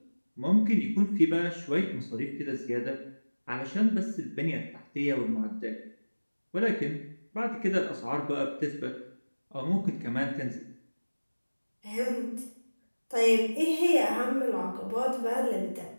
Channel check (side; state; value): both; inverted; correlation -1.00